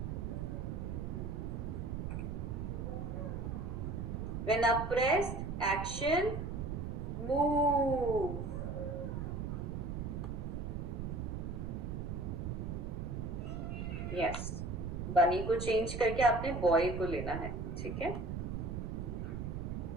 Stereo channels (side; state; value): right; noise; rumble, 3 dB below the sound